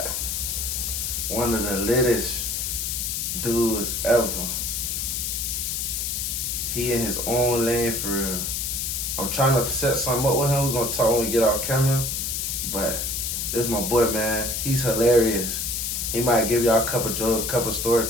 one of the littest dudes ever. He in his own lane for real. I'm trying to set something up with him. We're gonna talk when we get off camera. But this is my boy, man. He's hilarious. He might give y'all a couple jokes, a couple story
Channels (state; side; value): noise; left; hiss, 1 dB below the sound